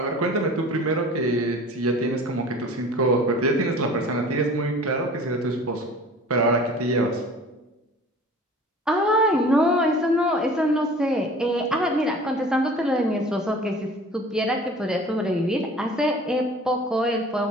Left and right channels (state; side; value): normal; both; correlation 0.44